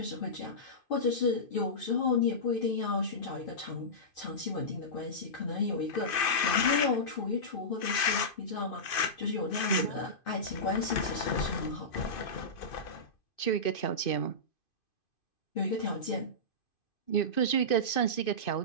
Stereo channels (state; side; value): late; right; 2.5 ms